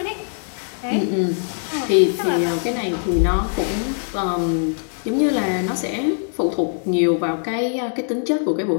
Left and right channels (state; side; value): silent; right; digital silence